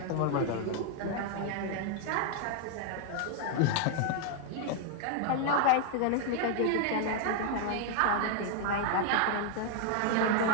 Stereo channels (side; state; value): both; different; correlation 0.00